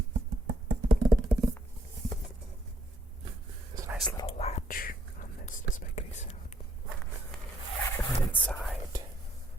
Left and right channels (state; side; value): normal; both; correlation 0.71